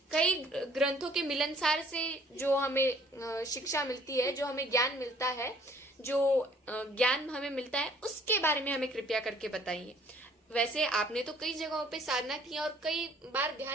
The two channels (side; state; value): both; normal; correlation 0.57